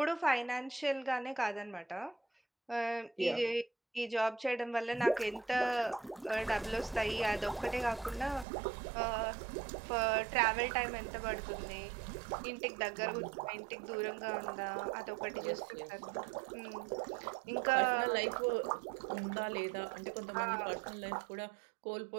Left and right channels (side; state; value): left; drops out; at 8.5 s